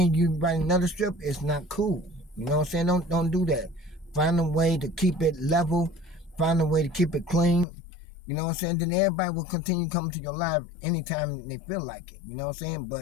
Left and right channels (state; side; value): drops out; right; at 7.7 s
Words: you write another strip, it's not cool. You know what I'm saying? Don't do that. Find a way to keep it level. Find a way to keep it clean. You know what I'm saying? Then everybody will continue coming to your live anytime they feel like it. You know what I'm saying?